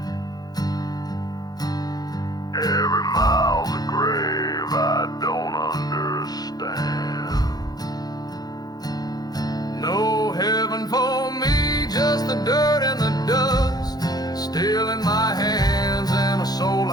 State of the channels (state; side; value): late; right; 0.19 ms